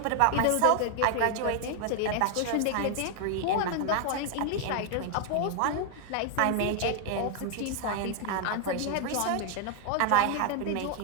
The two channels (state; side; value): different; both; correlation 0.01